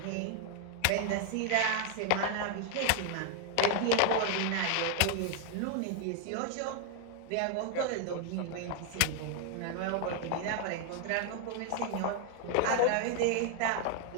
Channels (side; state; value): both; different; correlation 0.01